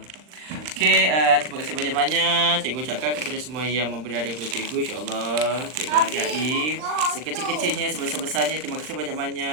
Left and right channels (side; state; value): left; late; 39 ms